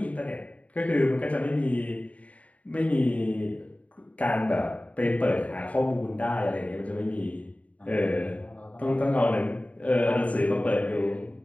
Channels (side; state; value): right; late; 0.067 ms